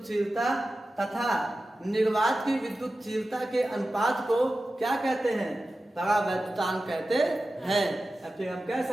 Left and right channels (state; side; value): normal; both; correlation 0.94